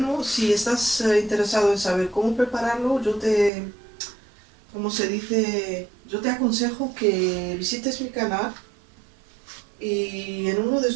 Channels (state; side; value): drops out; left; at 3.5 s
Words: Si estás interesado en saber cómo prepararlo, como se dice, yo te aconsejo que visites mi canal y en uno de